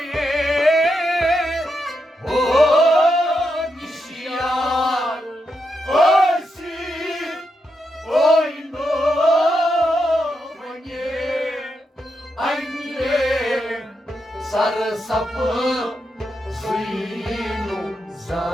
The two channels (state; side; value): normal; both; correlation 0.84